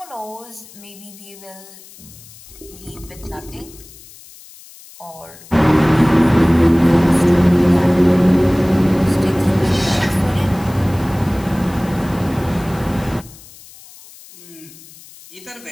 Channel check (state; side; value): noise; left; hiss, 21 dB below the sound